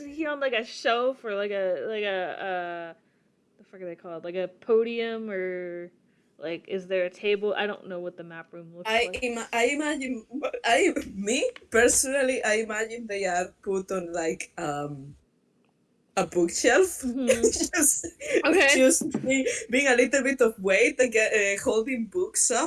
he on like a shelf or like a the fuck are they called? Like a podium or like is there a table? I don't know what the map room looks like. I imagine me personally I imagine they are put on like a bookshelf. Mm-hmm. just Okay. just being a little bit of weight again, holding books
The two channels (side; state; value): both; identical; correlation 1.00